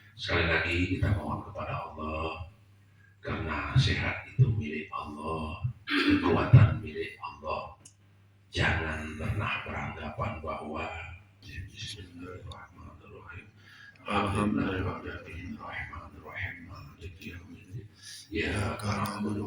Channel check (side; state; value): both; identical; correlation 1.00